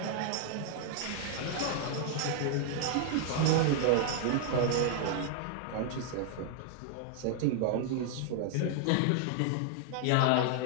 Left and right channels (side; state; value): both; different; correlation 0.00